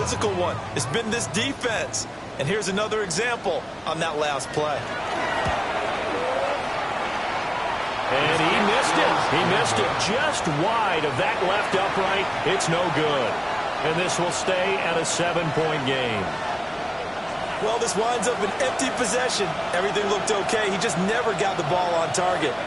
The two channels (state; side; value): identical; both; correlation 1.00